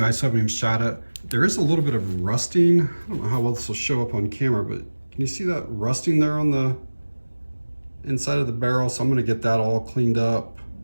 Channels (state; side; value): inverted; both; correlation -1.00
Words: I still haven't even shot it. There is a little bit of rusting. I don't know how well this will show up on camera, but can you see that rusting there on the inside of the barrel? So I'm going to get that all cleaned up.